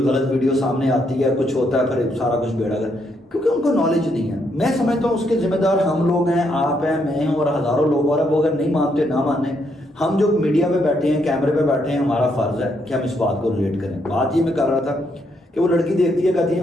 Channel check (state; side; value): normal; both; correlation 0.75